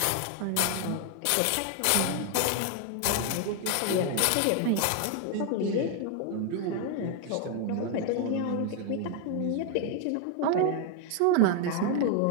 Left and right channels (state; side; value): different; both; correlation 0.01